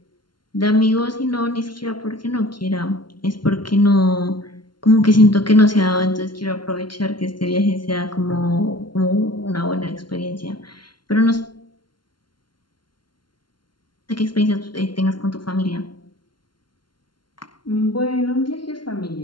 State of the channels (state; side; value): late; right; 0.72 ms